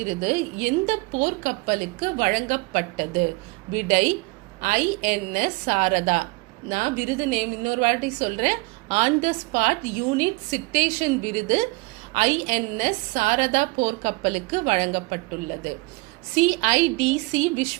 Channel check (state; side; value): quieter; left; 25.5 dB